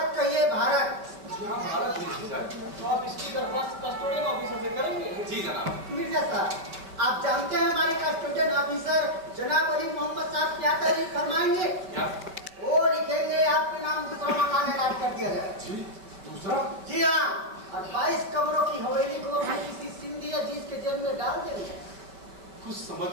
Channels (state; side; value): late; left; 5.2 ms